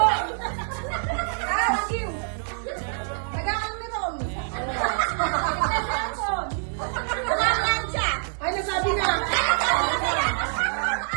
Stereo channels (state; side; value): silent; left; 61 dB below the other